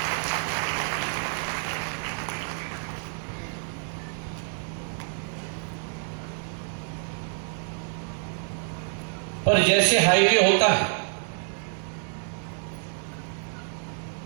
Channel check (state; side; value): silent; left; 59 dB below the other